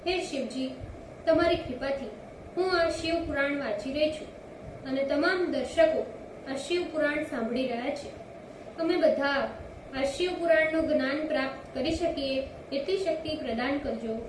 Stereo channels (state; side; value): identical; both; correlation 1.00